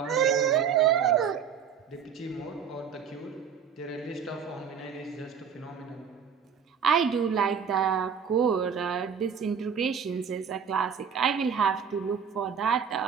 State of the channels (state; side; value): quieter; left; 7.1 dB